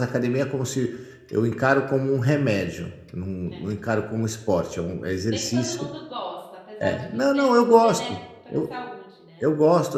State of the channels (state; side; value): identical; both; correlation 1.00